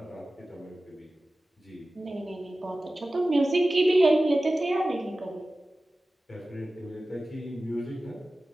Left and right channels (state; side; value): normal; both; correlation 0.96